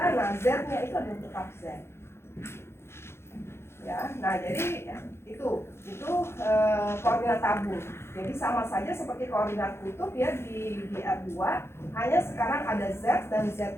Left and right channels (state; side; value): late; right; 0.12 ms